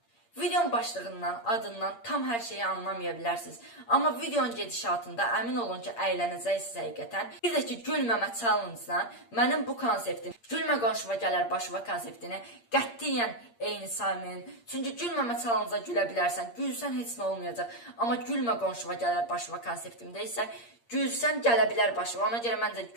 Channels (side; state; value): right; late; 8.6 ms